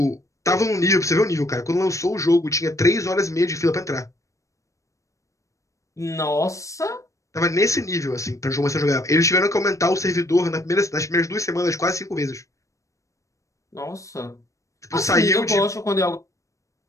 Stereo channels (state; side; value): late; right; 0.15 ms